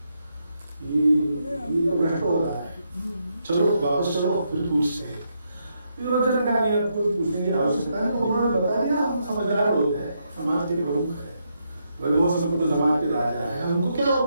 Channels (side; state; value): both; inverted; correlation -0.79